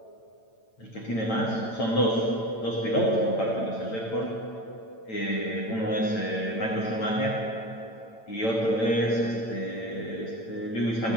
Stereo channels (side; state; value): right; late; 8.9 ms